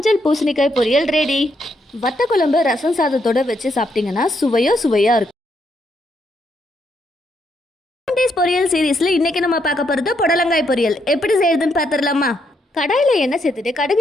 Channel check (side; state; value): both; normal; correlation 0.76